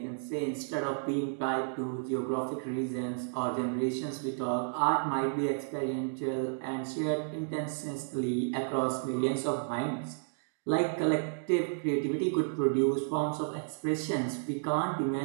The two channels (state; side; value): silent; left; digital silence